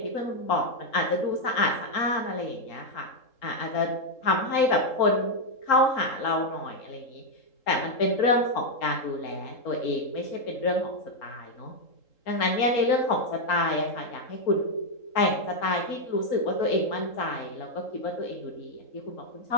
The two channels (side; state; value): right; late; 3.8 ms